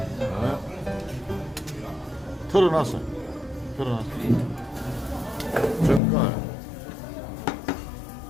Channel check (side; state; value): right; drops out; at 6.0 s